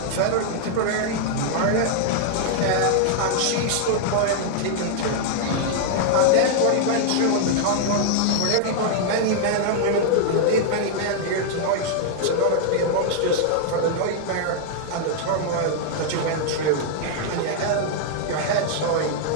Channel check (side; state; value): both; different; correlation -0.01